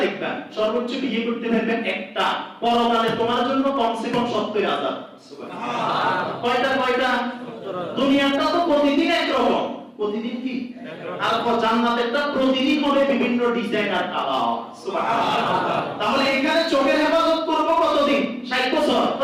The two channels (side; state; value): both; identical; correlation 1.00